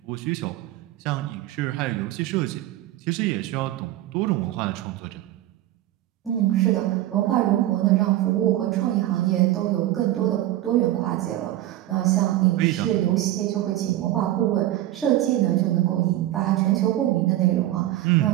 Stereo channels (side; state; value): left; quieter; 14.6 dB